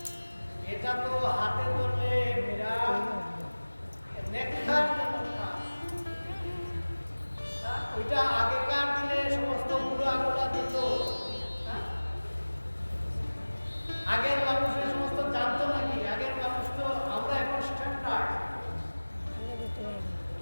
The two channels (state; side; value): inverted; both; correlation -1.00